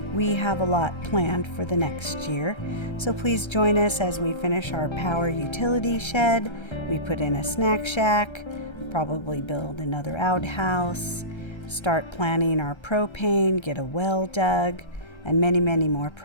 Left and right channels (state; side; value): late; right; 1.3 ms